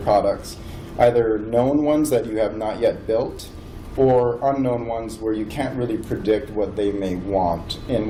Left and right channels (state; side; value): identical; both; correlation 1.00